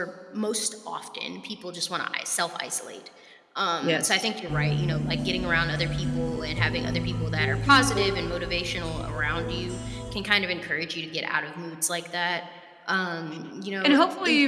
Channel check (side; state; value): both; identical; correlation 1.00